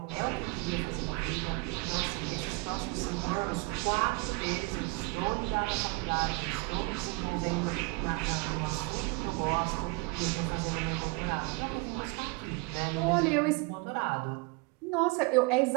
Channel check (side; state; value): left; quieter; 26.2 dB